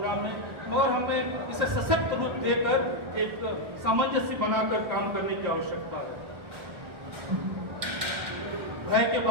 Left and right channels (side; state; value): left; late; 1.3 ms